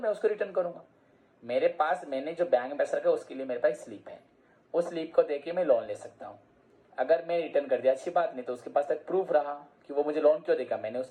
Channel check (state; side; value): identical; both; correlation 1.00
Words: उसको रिटर्न करूंगा। मेरे पास मैंने जो बैंक में पैसा रखा उसके लिए मेरे पास स्लिप है, उस स्लिप को देके मैं लोन ले सकता हूँ। अगर मैं रिटर्न कर दिया अच्छी बात, नहीं तो उसके पास तक प्रूफ रहा कि वो मुझे लोन क्यों देगा, मैंने